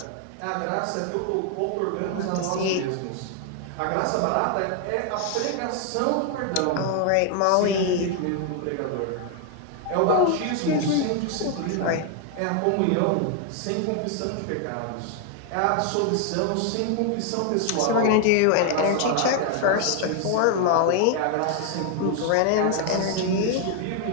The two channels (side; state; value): both; different; correlation 0.00